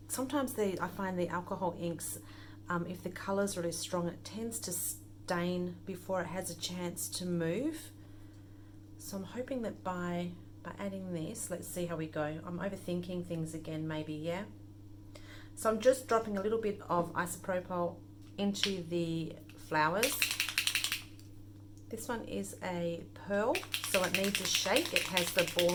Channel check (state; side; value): identical; both; correlation 1.00